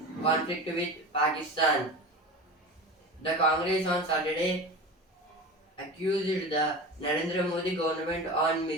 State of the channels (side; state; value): both; normal; correlation 0.31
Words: conflict with Pakistan. The Congress on Saturday accused the Narendra Modi government on